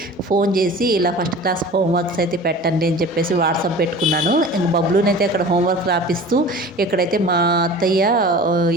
ఫోన్ చేసి ఇలా ఫస్ట్ క్లాస్ హోంవర్క్స్ అయితే పెట్టండి అని చెప్పేసి వాట్సాప్ పెట్టుకున్నాను. ఇంక బబ్లునైతే అక్కడ హోంవర్క్ రాపిస్తూ ఇక్కడైతే మా అత్తయ్య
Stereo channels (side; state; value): both; normal; correlation 0.39